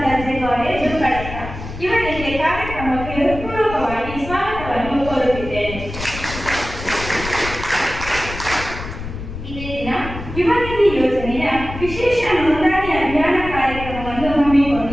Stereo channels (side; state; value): left; noise; rumble, 10 dB below the sound